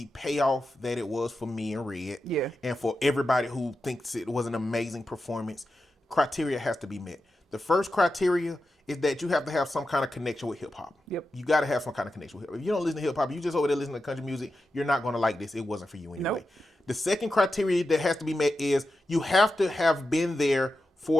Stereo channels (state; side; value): normal; both; correlation 0.90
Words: payoff that it was for me and Red, and for everybody who thinks it was an amazing performance, criteria has to be met. The first criteria is that you have to have some kind of connection with hip hop. Yep. You got to have some kind of connection with hip hop. If you don't listen to hip hop, you just over there listening to country music, you're not going to like this. It wasn't for you anyway. Nope. The second criteria that has to be met is you have to have been there